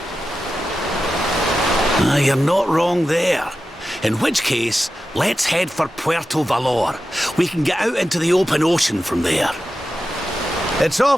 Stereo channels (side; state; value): both; normal; correlation 0.92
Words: You're not wrong there. In which case, let's head for Puerto Valor. We can get out into the open ocean from there. It's